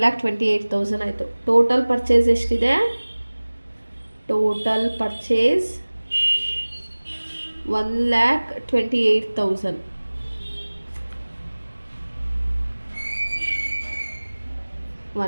ಆಯಿತು. ಟೋಟಲ್ ಪರ್ಚೇಸ್ ಎಷ್ಟಿದೆ? Total purchase 1,28,000.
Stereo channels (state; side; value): inverted; both; correlation -1.00